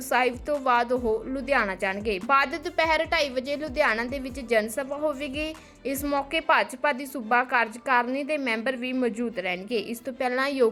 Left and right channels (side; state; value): both; identical; correlation 1.00